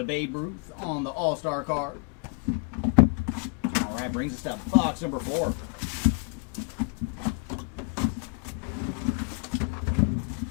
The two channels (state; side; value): quieter; right; 33.4 dB